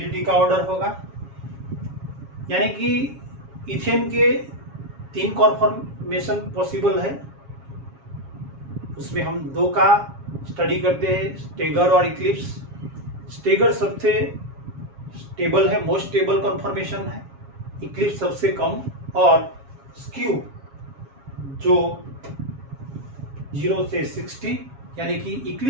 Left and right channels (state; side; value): late; left; 7.3 ms